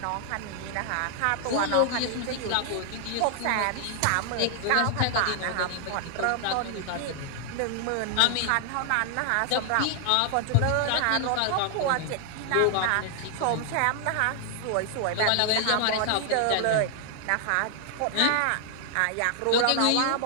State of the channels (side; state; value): both; different; correlation 0.00